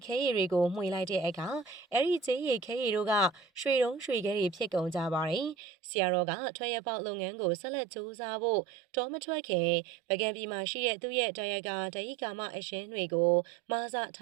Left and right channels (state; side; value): drops out; left; at 5.6 s